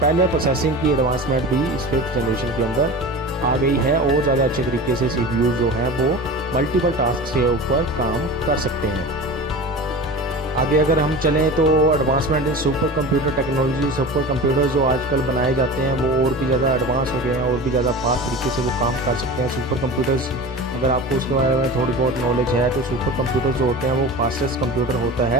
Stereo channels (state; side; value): normal; both; correlation 0.33